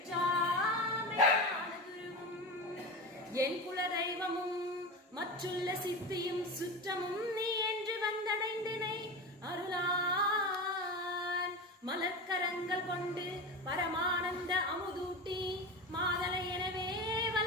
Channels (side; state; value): both; normal; correlation 0.24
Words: குருவும் என் குல தெய்வமும் மற்றுள்ள சித்தியும் சுற்றமும் நீ என்று வந்தடைந்தினை அருளான் மலர்க்கரங்கள் கொண்டு பரமானந்த அமுதூட்டி மாதலை எனவே